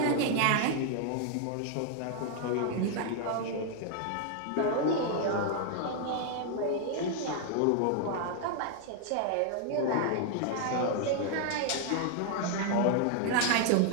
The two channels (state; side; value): different; both; correlation 0.00